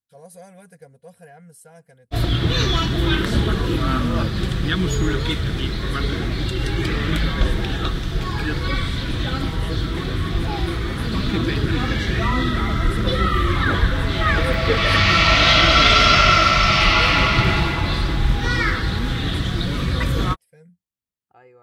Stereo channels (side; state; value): both; identical; correlation 1.00